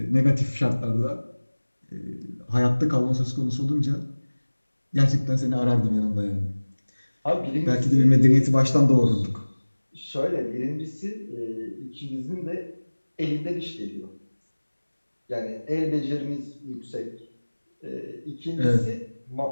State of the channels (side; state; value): both; inverted; correlation -1.00